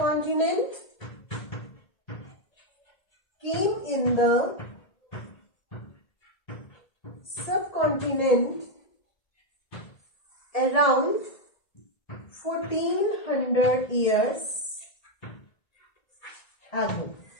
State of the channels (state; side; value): late; right; 1.8 ms